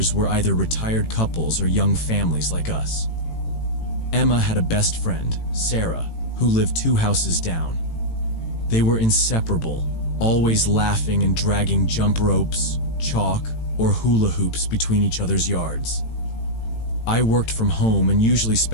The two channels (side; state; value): right; late; 18 ms